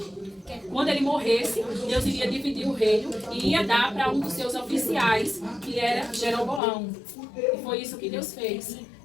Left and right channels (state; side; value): drops out; right; at 6.6 s